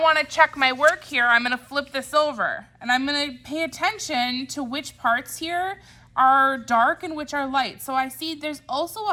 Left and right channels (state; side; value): identical; both; correlation 1.00